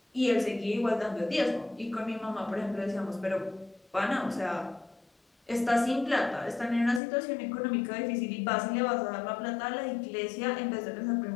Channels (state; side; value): drops out; right; at 7.0 s